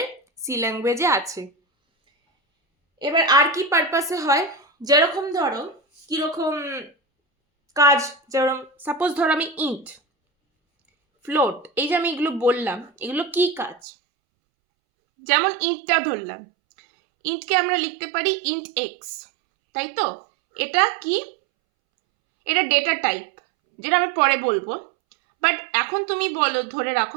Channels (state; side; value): drops out; left; at 13.8 s